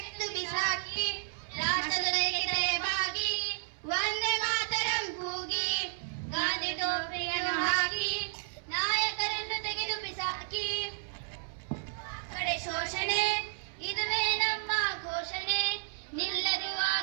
ಬಿಸಾಕಿ, ರಾಷ್ಟ್ರದ ತಲೆಬಾಗಿ ವಂದೇ ಮಾತರಂ ಕೂಗಿ, ಗಾಂಧಿ ಟೋಪಿಯನ್ನು ಹಾಕಿ ನಾಯಕರನ್ನು ತೆಗೆದು ಬಿಸಾಕಿ. ಕಡೆ ಶೋಷಣೆ ಇದುವೇ ನಮ್ಮ ಘೋಷಣೆ, ನಿಲ್ಲದು ಆ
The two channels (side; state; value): left; silent; 56 dB below the other